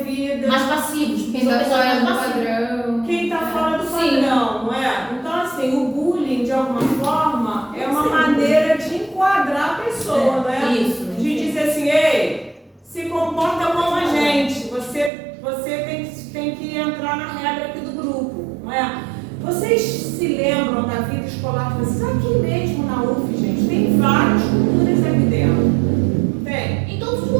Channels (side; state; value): left; drops out; at 15.1 s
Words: Mais passivos. Quem São tá pessoas fora mais do passivas. padrão. Quem está fora do Sim. padrão, não é? Então, assim, o bullying, de alguma forma, é uma maneira de enquadrar a pessoa, não é? Isso. De dizer assim, ei, se comporta como a gente, você tem que entrar na regra aqui do grupo, não é? Vocês se lembram da vida escolar de vocês? Aqui mesmo na UF, gente, tem várias culturas aqui dentro. Tem. Em todos os